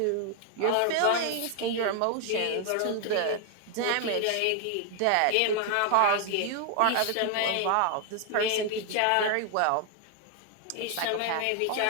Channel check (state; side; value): different; both; correlation 0.00